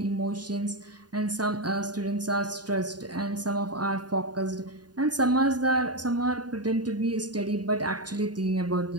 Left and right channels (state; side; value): late; left; 0.69 ms